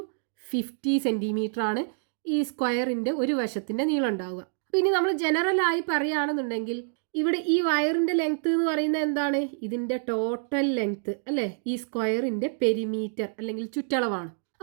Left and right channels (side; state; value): left; silent; digital silence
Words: 50 centimetre ആണ് ഈ സ്ക്വയറിന്റെ ഒരു വശത്തിന്റെ നീളം ഉണ്ടാവുക. അപ്പോൾ ഇനി നമ്മൾ ജനറൽ ആയി പറയുകയാണെന്നുണ്ടെങ്കിൽ ഇവിടെ ഈ വയറിന്റെ ലെങ്ത് എന്ന് പറയുന്നത് എന്താണ്, ഇതിന്റെ ടോട്ടൽ ലെങ്ത് അല്ലേ, ഈ സ്ക്വയറിന്റെ പെരിമീറ്റർ അല്ലെങ്കിൽ ചുറ്റളവാണ്.